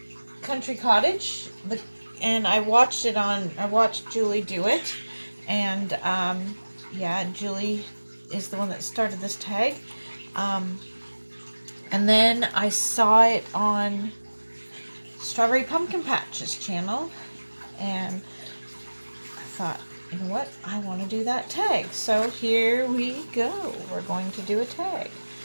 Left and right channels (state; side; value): inverted; both; correlation -1.00